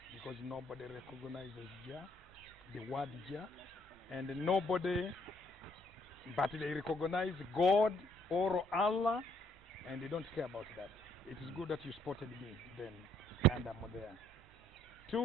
because nobody recognizes Jah, the word Jah, and nobody, but they recognize God or Allah, and they don't care about that. It is good that you spotted me then, and I'm there.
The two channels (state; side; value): normal; both; correlation 0.66